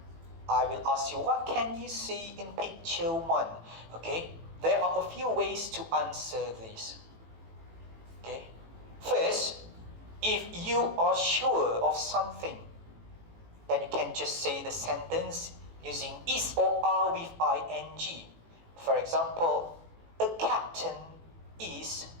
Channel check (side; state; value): left; late; 18 ms